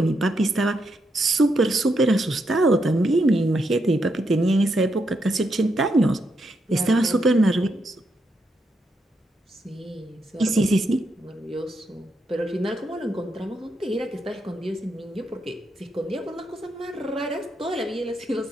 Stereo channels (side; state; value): both; normal; correlation 0.81